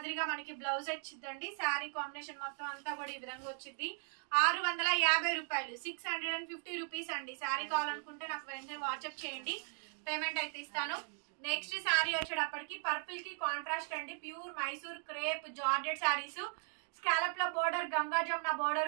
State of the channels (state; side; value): silent; left; 52 dB below the other